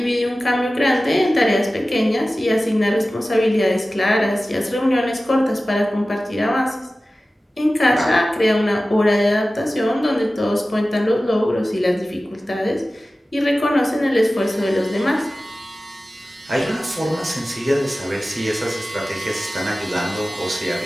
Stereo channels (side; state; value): both; normal; correlation 0.96